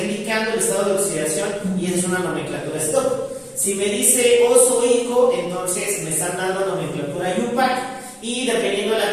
el estado de oxidación y esa es una nomenclatura stock. Si me dice oso ico, entonces me están dando nomenclatura IUPAC. Y dependiendo de la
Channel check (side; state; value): both; identical; correlation 1.00